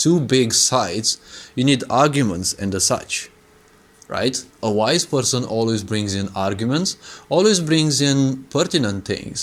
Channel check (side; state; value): both; identical; correlation 1.00